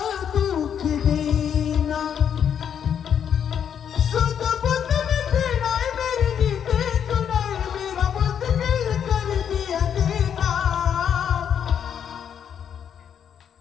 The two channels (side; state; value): right; quieter; 8.4 dB